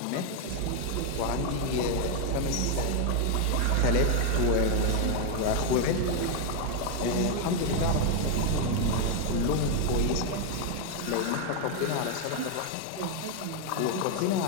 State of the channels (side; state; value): both; different; correlation 0.01